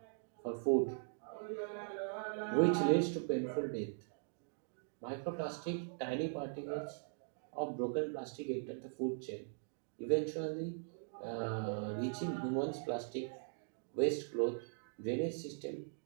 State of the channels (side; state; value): left; silent; digital silence